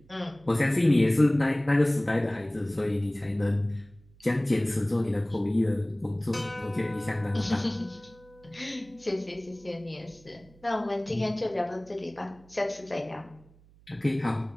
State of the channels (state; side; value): noise; right; hum, 27 dB below the sound